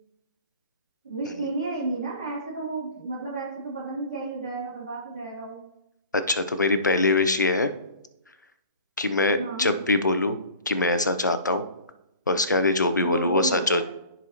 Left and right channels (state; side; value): inverted; both; correlation -0.43